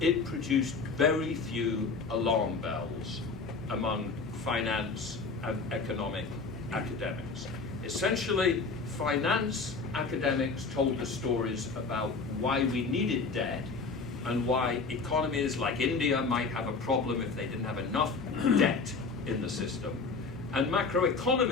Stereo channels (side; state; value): right; quieter; 4.4 dB